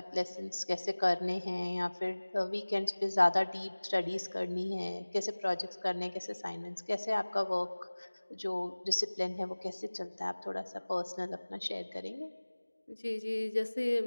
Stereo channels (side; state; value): both; inverted; correlation -1.00